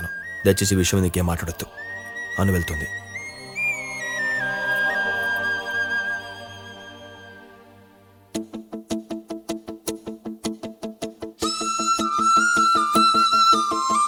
దయచేసి ఈ విషయం నీకేం మాట్లాడొద్దు. అను వెళ్తుంది.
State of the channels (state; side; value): identical; both; correlation 1.00